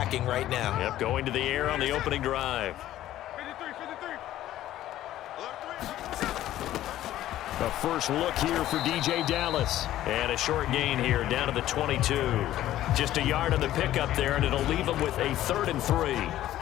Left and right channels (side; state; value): right; quieter; 13.5 dB